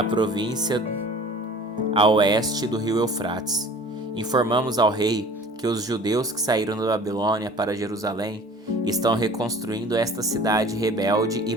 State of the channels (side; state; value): both; normal; correlation 0.46